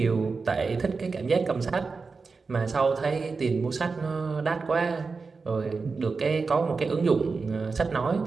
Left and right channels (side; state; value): left; quieter; 4.5 dB